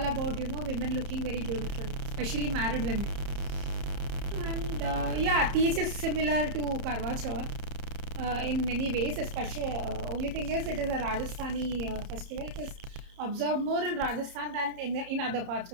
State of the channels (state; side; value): late; left; 30 ms